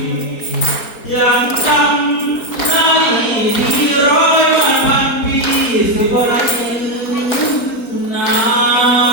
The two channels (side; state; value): right; late; 4.2 ms